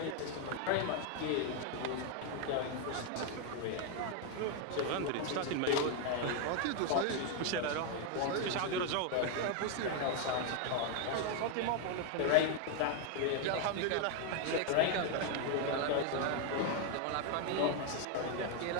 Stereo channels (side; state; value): both; different; correlation 0.01